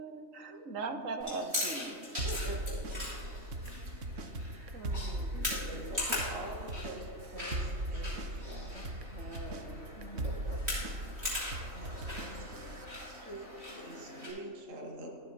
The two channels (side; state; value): left; late; 3.2 ms